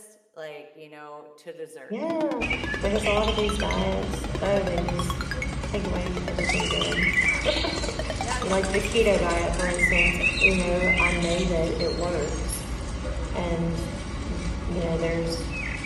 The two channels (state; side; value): identical; both; correlation 1.00